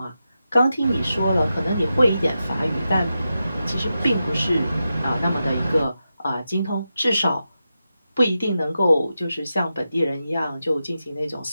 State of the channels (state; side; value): inverted; both; correlation -0.89